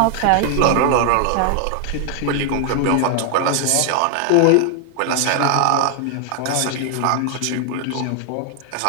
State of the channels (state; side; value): different; both; correlation 0.00